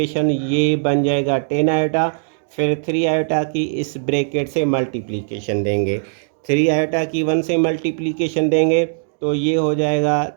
ये बन जाएगा 10 आयोटा। फिर 3 आयोटा की इस ब्रैकेट से मल्टीप्लिकेशन देंगे। 3 आयोटा की 1 से मल्टीप्लिकेशन देंगे तो ये हो जाएगा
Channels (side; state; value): left; silent; digital silence